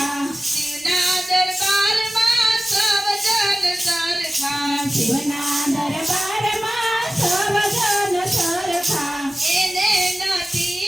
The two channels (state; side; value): normal; both; correlation 0.96